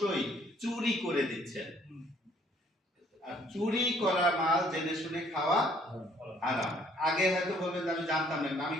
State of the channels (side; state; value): both; normal; correlation 0.62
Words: চুরি করে দিচ্ছেন। আর চুরি করা মাল জেনে শুনে খাওয়া হারাম। আগে হয়তো বলবেন আমি জানতাম না, আমি